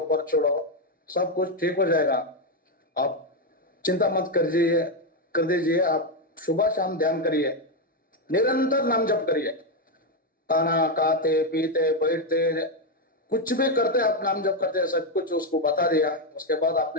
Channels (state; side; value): normal; both; correlation 0.05